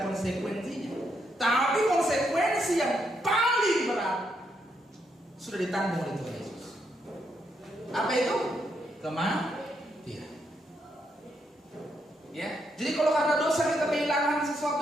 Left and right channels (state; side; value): normal; both; correlation 0.78